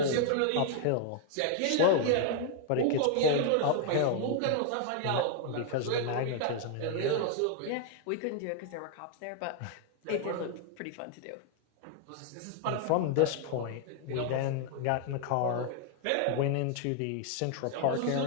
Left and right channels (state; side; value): different; both; correlation 0.00